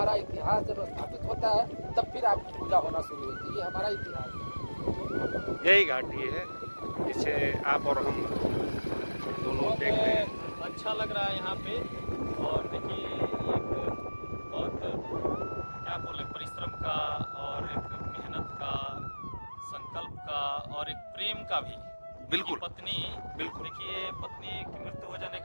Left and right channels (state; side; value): inverted; both; correlation -1.00